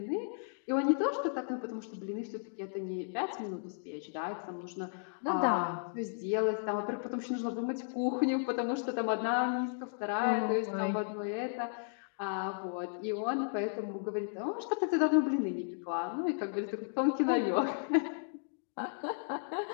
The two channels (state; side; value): silent; right; digital silence